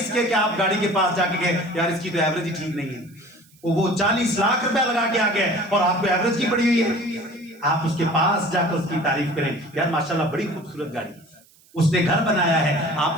کے کہ آپ گاڑی کے پاس جا کے کہیں یار اس کی تو ایوریج ہی ٹھیک نہیں ہے، وہ 40 لاکھ روپے لگا کے آ گیا اور آپ کو ایوریج کی پڑی ہوئی ہے۔ آپ اس کے پاس جا کر اس کی تعریف کریں، یار ماشاءاللہ بڑی خوبصورت گاڑی، اس نے گھر بنایا ہے، آپ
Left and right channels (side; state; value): right; noise; hiss, 29 dB below the sound